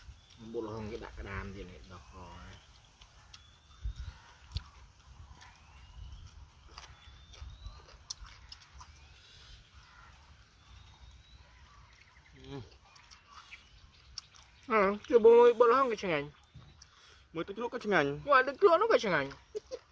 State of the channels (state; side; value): identical; both; correlation 1.00